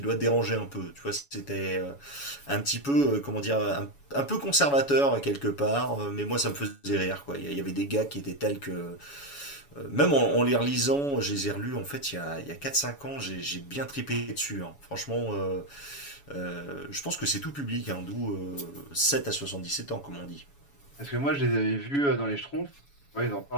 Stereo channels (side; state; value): right; late; 7.1 ms